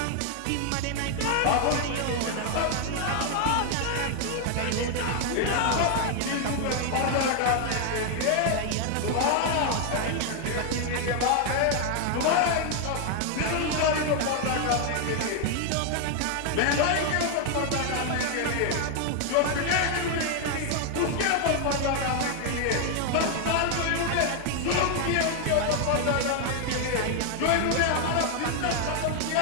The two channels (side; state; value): both; different; correlation 0.00